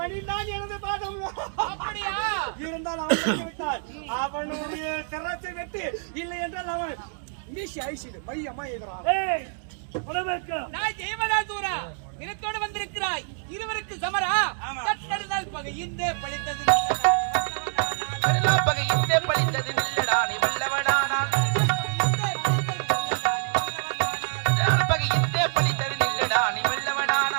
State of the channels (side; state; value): left; silent; 61 dB below the other